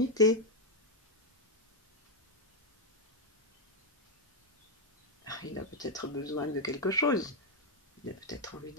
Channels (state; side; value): normal; both; correlation 0.02